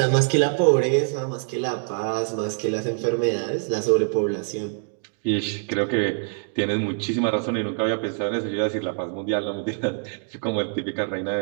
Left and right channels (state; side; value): silent; left; digital silence